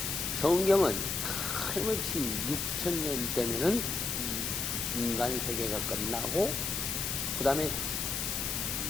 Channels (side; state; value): left; noise; hiss, 1 dB below the sound